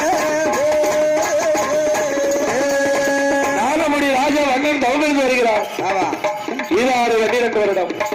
நாகமுடி ராஜா வண்ணன் தவமிருந்து வருகிறார். ஈராறு 12 வருடம்.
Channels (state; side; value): identical; both; correlation 1.00